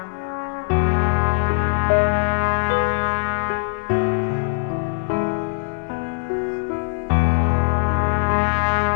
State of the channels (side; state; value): right; silent; digital silence